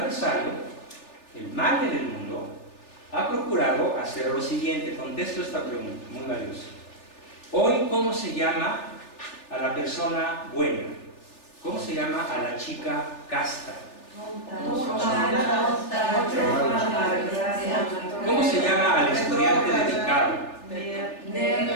el mal en el mundo, ha procurado hacer lo siguiente. Contesto esta pregunta, muy valiosa. Hoy, ¿cómo se llama a la persona buena? ¿Cómo se llama a la chica casta? ¿Cómo se llama al estudiante dedicado?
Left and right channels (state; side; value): late; right; 3.4 ms